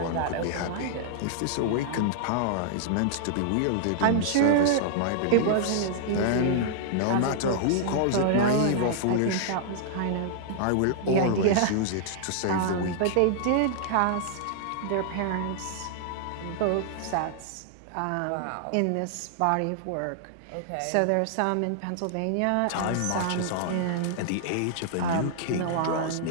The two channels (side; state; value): both; different; correlation -0.01